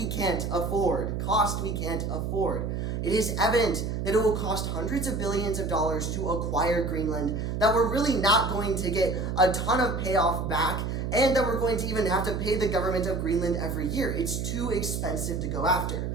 can't afford. Cost we can't afford. It is evident that it will cost hundreds of billions of dollars to acquire Greenland, that we're really not going to get a ton of payoff back, and that we're going to even have to pay the government of Greenland every year. It's too expensive to go after.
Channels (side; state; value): right; noise; hum, 2 dB below the sound